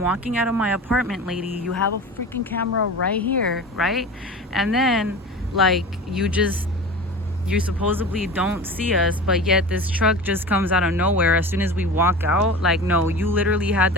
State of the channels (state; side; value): normal; both; correlation 0.33